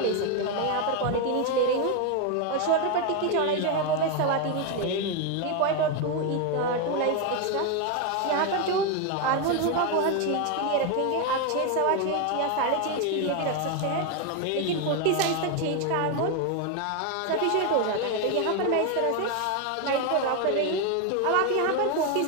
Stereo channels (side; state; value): both; different; correlation 0.02